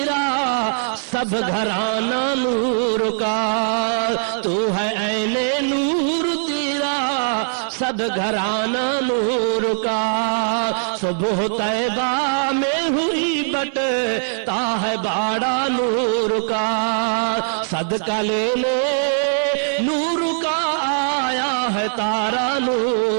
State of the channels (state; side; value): silent; left; 57 dB below the other